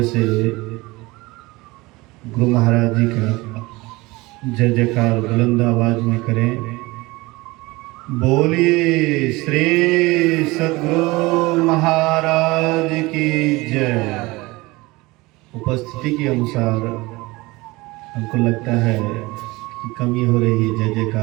से गुरु महाराज जी का जय जयकार बुलंद आवाज में करें। बोलिए श्री सद्गुरु महाराज की जय। उपस्थिति के अनुसार हमको लगता है कि कमी हो रही है जय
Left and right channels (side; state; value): left; quieter; 22.0 dB